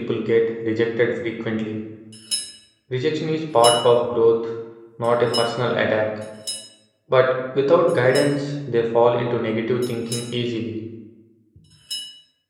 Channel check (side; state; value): both; identical; correlation 1.00